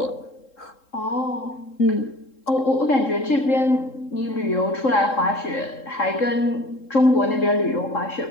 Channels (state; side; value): late; right; 3.7 ms